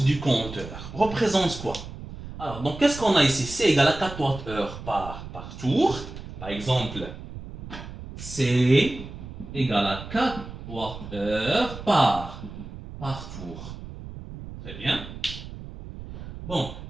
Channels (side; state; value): right; noise; rumble, 12 dB below the sound